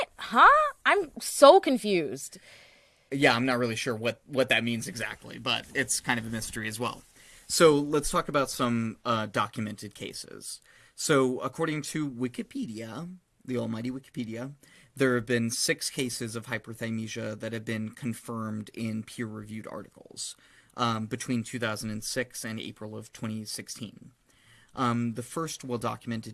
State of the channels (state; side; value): identical; both; correlation 1.00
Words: Huh? I'm so confused. Yeah, I'm not really sure what that means exactly, but it's kind of a mystery as well. So let's talk about some documented cases. So according to Wikipedia, the almighty Wikipedia, there have been 6 cases of hyperthymesia that have been confirmed in peer-reviewed articles between 2006 and April of 2016. The first